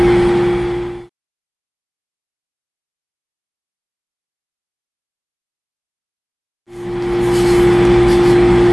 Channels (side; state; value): both; identical; correlation 1.00